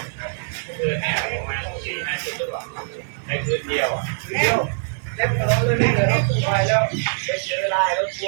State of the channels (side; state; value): left; silent; 55 dB below the other